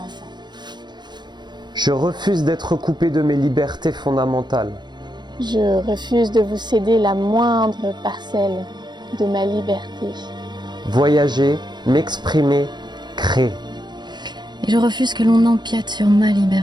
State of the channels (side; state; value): left; late; 0.21 ms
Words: enfant. Je refuse d'être coupé de mes libertés fondamentales. Je refuse de vous céder la moindre parcelle de ma liberté. Voyager, m'exprimer, créer. Et je refuse que l'on empiète sur ma